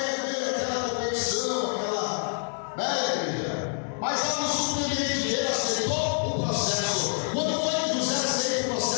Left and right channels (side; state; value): right; silent; 57 dB below the other